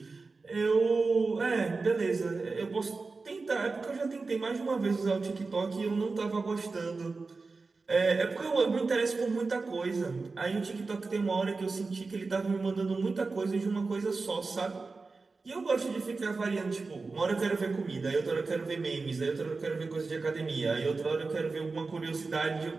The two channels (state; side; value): quieter; left; 4.0 dB